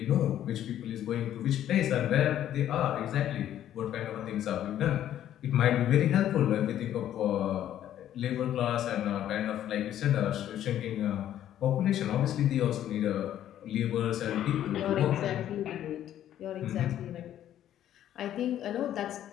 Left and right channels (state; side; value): quieter; right; 11.5 dB